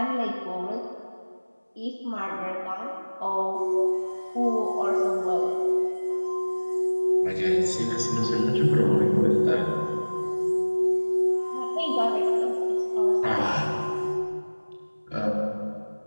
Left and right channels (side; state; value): both; inverted; correlation -1.00